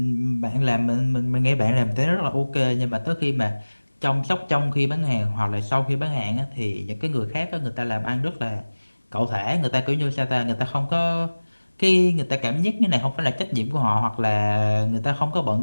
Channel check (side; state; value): both; inverted; correlation -1.00